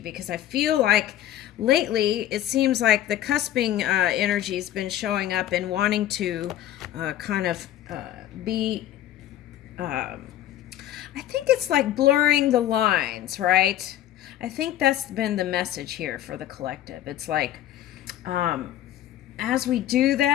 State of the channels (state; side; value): quieter; right; 12.7 dB